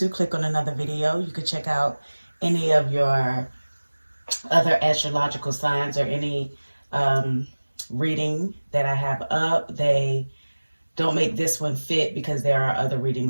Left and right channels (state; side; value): inverted; both; correlation -1.00